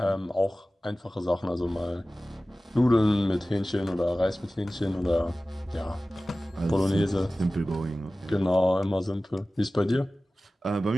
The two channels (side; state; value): both; normal; correlation 0.97